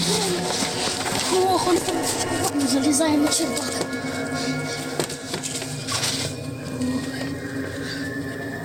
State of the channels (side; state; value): both; identical; correlation 1.00